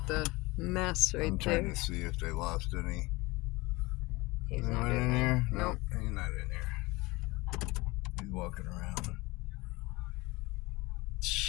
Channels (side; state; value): right; quieter; 22.7 dB